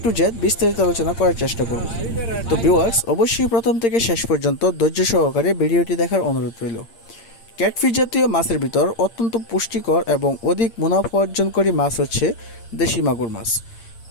টু জেড বিস্তারিত আলোচনা করার চেষ্টা করব। তো ভিউয়ার্স, অবশ্যই প্রথম থেকে শেষ পর্যন্ত ধৈর্য সহকারে ভিডিওটি দেখার অনুরোধ রইল। ক্যাটফিশ জাতীয় মাছের ভিতর অত্যন্ত পুষ্টিকর এবং অধিক মুনাফা অর্জনকারী মাছ হচ্ছে দেশি মাগুর মাছ।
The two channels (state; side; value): late; right; 8.7 ms